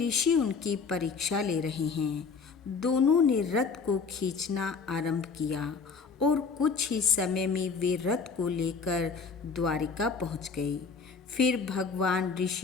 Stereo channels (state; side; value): quieter; right; 5.2 dB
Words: उनकी परीक्षा ले रहे हैं। दोनों ने रथ को खींचना आरंभ किया और कुछ ही समय में वे रथ को लेकर द्वारिका पहुंच गए। फिर भगवान